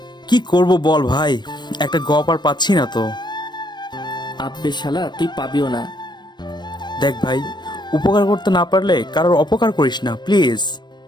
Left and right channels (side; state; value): right; late; 0.21 ms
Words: কি করব বল ভাই, একটা গপ আর পাচ্ছি না তো। আব্বে শালা, তুই পাবিও না। দেখ ভাই, উপকার করতে না পারলে কারোর অপকার করিস না প্লিজ।